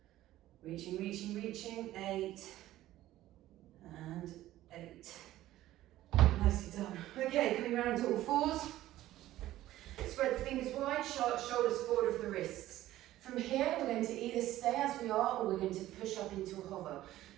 reaching, reaching, reaching, 8, and 8. Nicely done. Okay, coming around to all fours. Spread the fingers wide, shoulders forward of the wrists. From here, we're going to either stay as we are, or we're going to push up into a hover.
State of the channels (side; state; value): left; quieter; 14.7 dB